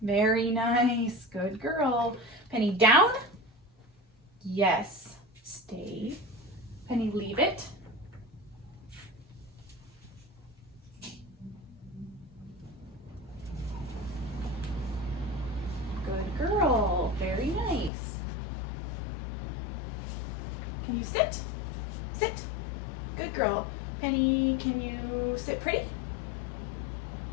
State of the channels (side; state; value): right; drops out; at 17.9 s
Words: nice. Good girl. Penny, down. Yes. Stay. Penny, leave it. Good girl. Very nice. Can you sit? Sit. Good girl. Penny, can you sit pretty?